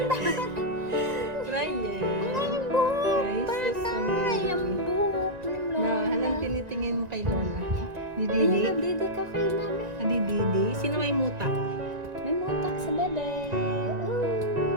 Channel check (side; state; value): left; late; 1.9 ms